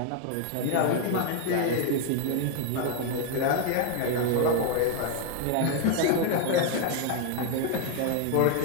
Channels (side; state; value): both; different; correlation 0.01